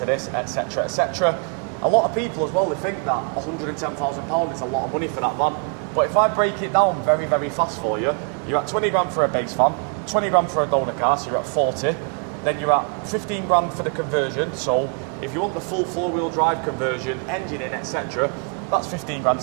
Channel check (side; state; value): left; quieter; 39.4 dB